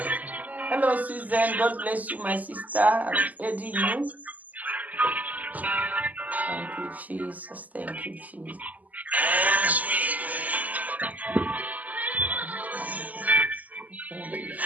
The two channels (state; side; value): late; left; 0.078 ms